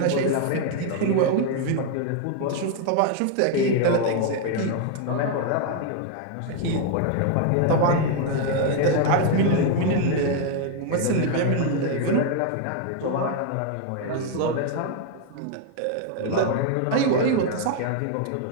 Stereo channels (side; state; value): both; different; correlation 0.00